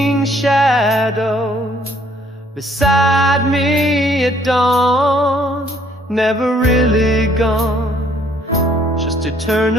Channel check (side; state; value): both; normal; correlation 0.63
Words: shadow beside me at dawn, never really gone, just